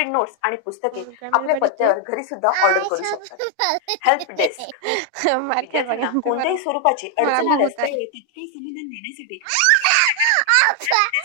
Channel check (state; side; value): different; both; correlation 0.00